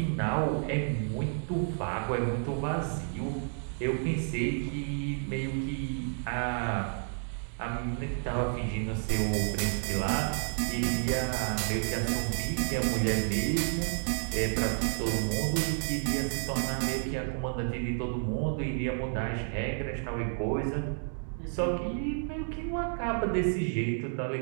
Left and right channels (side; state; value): left; silent; digital silence